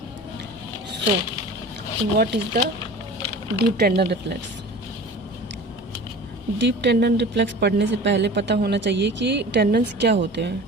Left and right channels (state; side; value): normal; both; correlation 0.39